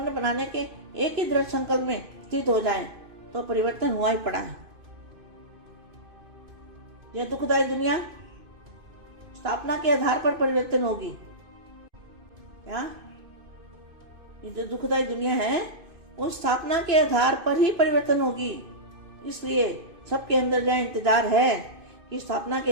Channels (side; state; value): left; late; 2.6 ms